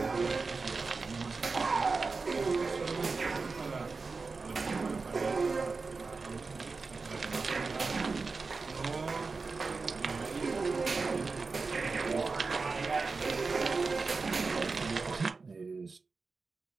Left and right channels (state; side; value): quieter; left; 4.3 dB